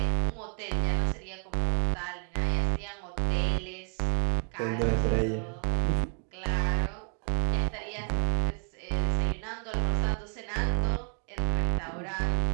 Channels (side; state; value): left; quieter; 39.8 dB